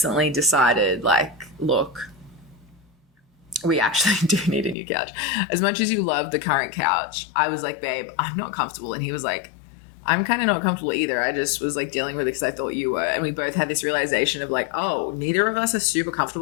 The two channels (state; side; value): drops out; right; at 4.8 s